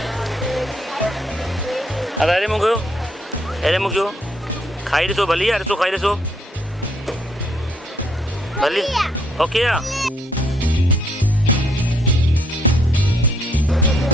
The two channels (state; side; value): normal; both; correlation 0.70